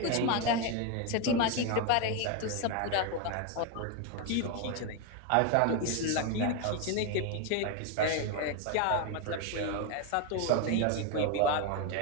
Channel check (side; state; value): both; different; correlation 0.02